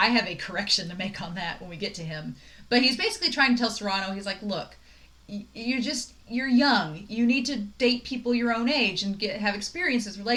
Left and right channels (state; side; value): identical; both; correlation 1.00